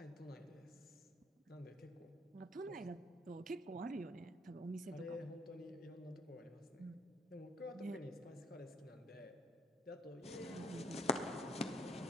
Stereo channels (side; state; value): both; normal; correlation 0.65